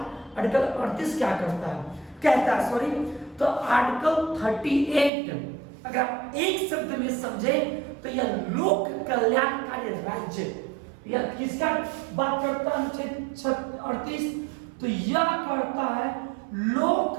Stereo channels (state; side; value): drops out; left; at 5.1 s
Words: आर्टिकल 38 क्या करता है, कहता है सॉरी। तो आर्टिकल 38 अगर आप एक शब्द में समझे तो यह लोक कल्याणकारी राज्य, यह किसका बात करता है अनुच्छेद 38, तो यह करता है लोक